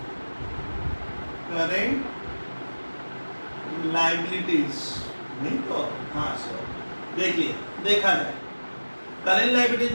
करेंट लायबिलिटीज, नहीं तो हाँ सर देखिए, देखा जाए करेंट लायबिलिटीज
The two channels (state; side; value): inverted; both; correlation -1.00